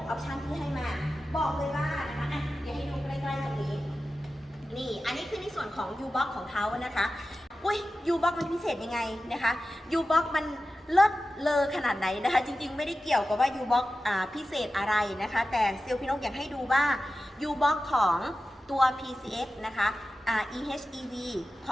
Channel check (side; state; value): both; normal; correlation 0.93